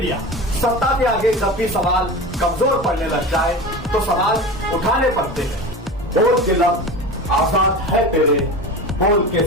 सत्ता के आगे जब भी सवाल कमजोर पड़ने लग जाए तो सवाल उठाने पड़ते हैं। बोल के लफ्ज आजाद है तेरे, बोल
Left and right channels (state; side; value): normal; both; correlation 0.29